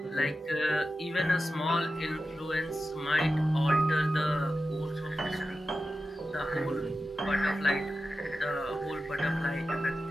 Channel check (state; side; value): normal; both; correlation 0.92